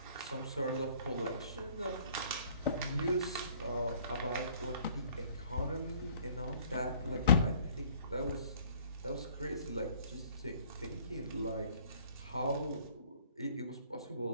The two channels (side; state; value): both; inverted; correlation -0.56